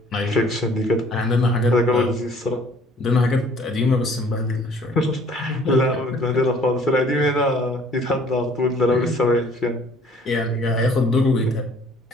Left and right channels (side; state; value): both; normal; correlation 0.56